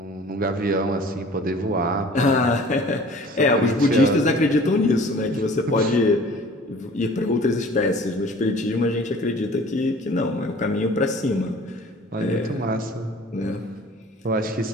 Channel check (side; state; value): both; normal; correlation 0.48